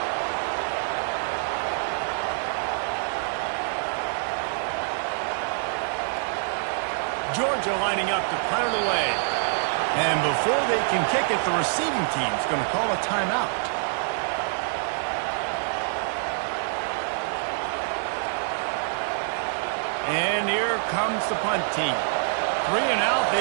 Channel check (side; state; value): left; silent; digital silence